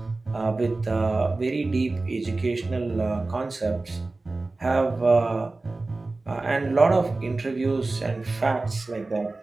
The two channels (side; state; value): left; quieter; 3.3 dB